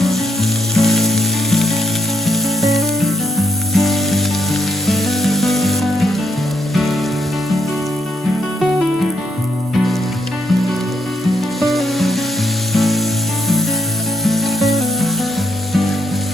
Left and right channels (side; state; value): both; normal; correlation 0.78